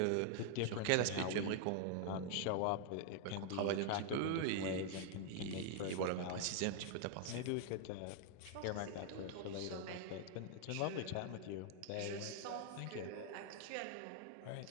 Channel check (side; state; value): both; different; correlation 0.00